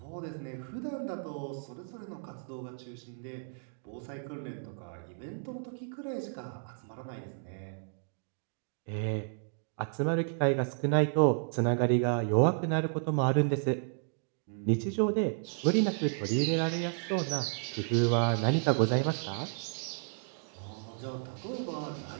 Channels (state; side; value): silent; left; digital silence